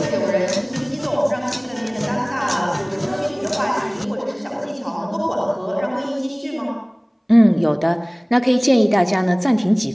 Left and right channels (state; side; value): identical; both; correlation 1.00